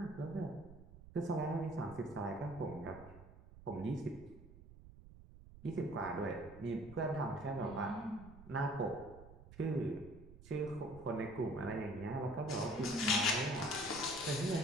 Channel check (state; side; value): noise; right; rumble, 18 dB below the sound